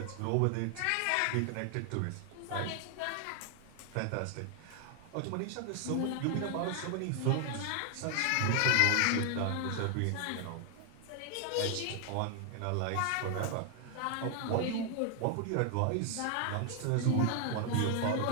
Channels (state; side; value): different; both; correlation 0.00